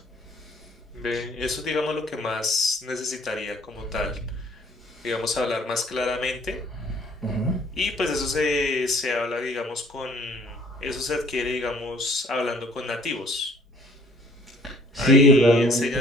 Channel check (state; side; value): normal; both; correlation 0.57